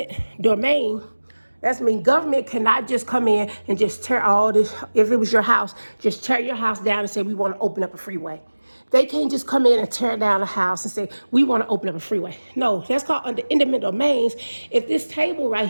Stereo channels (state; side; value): inverted; both; correlation -1.00